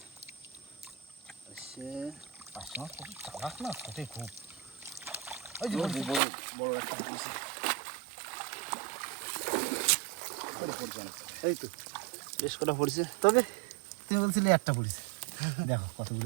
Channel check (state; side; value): drops out; left; at 6.2 s